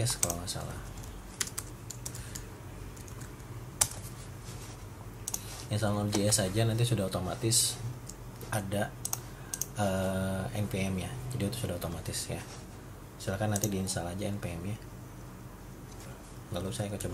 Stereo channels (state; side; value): identical; both; correlation 1.00